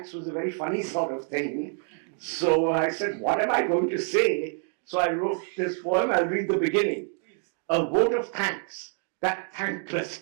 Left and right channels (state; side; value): silent; left; 58 dB below the other